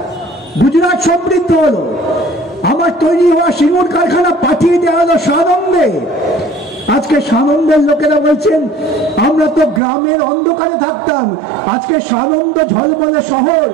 গুজরাট সমৃদ্ধ হলো। আমার তৈরি হওয়া সিঙ্গুর কারখানা পাঠিয়ে দেওয়া হলো সানন্দে। আজকে সানন্দের লোকেরা বলছেন আমরা তো গ্রামের অন্ধকারে থাকতাম, আজকে সানন্দ ঝলমলে শহর,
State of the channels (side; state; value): left; drops out; at 9.8 s